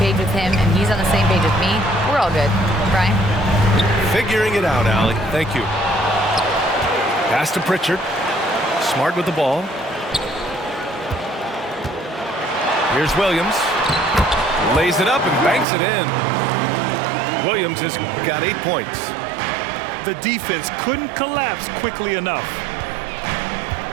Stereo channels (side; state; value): left; drops out; at 15.7 s